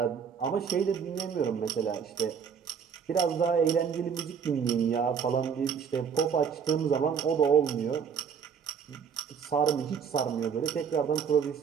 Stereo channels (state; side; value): quieter; left; 7.0 dB